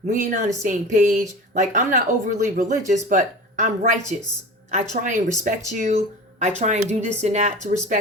We ain't on the same page. Like, I'm not overly religious, but I'm righteous. I try and respect you. I try and do this and that to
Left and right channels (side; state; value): both; normal; correlation 0.35